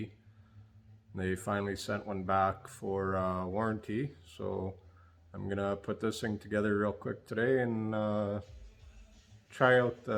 They finally sent one back for warranty, so I'm gonna put this thing together real quick today and try out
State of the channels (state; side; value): identical; both; correlation 1.00